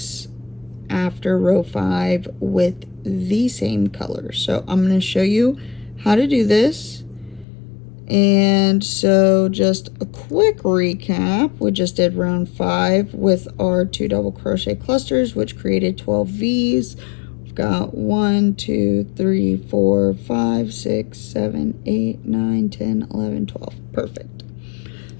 after row 5 with the same color. So I'm going to show you how to do this. And so just a quick recap, we just did round 5 with our 2 double crochet clusters, which created 12 V's. We've got 1, 2, 3, 4, 5, 6, 7, 8, 9, 10, 11, 12. Perfect.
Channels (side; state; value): right; drops out; at 7.5 s